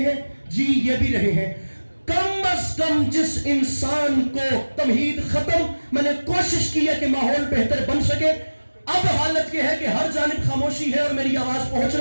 हैं, जी ये भी रहे हैं। कम अज कम जिस इंसान को तमहीद खत्म, मैंने कोशिश की है कि माहौल बेहतर बन सके। अब हालत यह है कि हर जानिब खामोशी है और मेरी आवाज पहुंच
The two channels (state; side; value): inverted; both; correlation -1.00